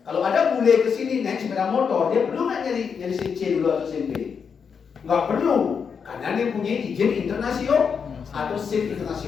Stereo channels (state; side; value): quieter; right; 6.4 dB